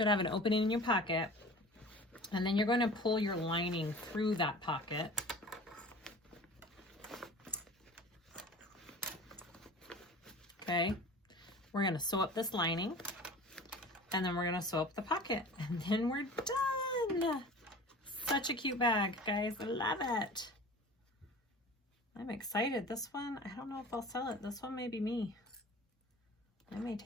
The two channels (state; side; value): normal; both; correlation 0.41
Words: have an opening in your pocket, and then you're going to pull your lining through that pocket. Okay, we're going to sew up this lining, and then we're going to sew up the pocket, and then we're done. Such a cute bag, guys. I love it. I'm excited. This one, I don't know if I'll sell it. This one may be me. I may